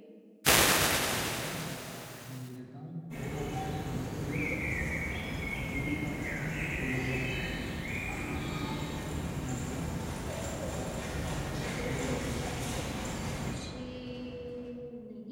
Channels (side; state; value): both; identical; correlation 1.00